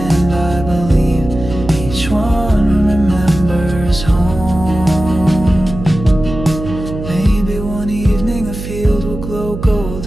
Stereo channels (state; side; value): noise; right; hum, 9 dB below the sound